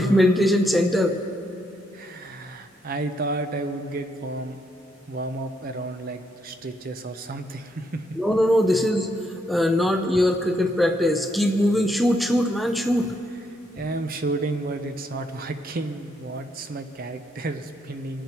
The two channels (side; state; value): both; normal; correlation 0.76